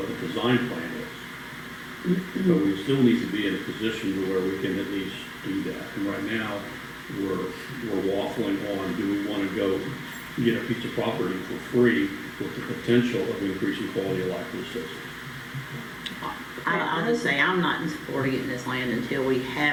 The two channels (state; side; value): identical; both; correlation 1.00